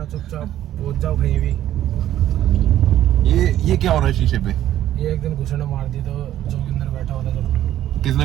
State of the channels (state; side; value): quieter; left; 12.3 dB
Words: चुपचाप पहुंच जाओ कहीं भी। ये क्या हो रहा है शीशे पे? ये एक दिन घुसने मार दी तो जोगिंदर बैठा हुआ था जब। किसने